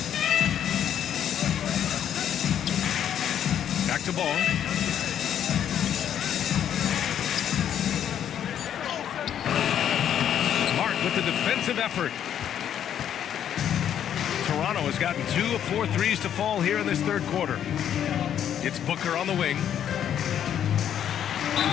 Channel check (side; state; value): right; quieter; 9.7 dB